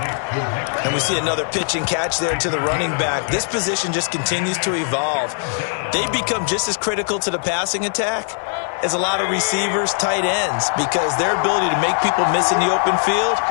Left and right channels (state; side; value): silent; right; 66 dB below the other